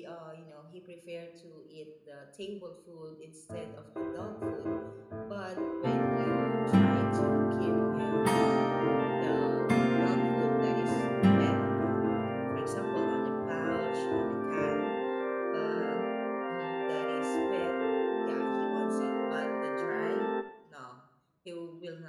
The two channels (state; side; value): identical; both; correlation 1.00